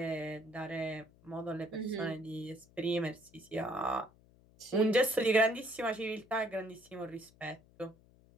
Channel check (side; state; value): left; noise; hum, 27 dB below the sound